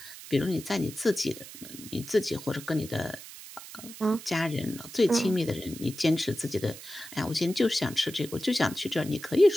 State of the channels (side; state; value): right; noise; hiss, 14 dB below the sound